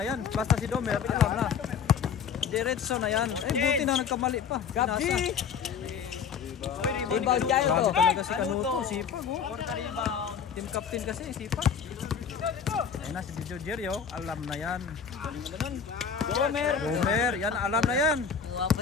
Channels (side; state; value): right; quieter; 6.9 dB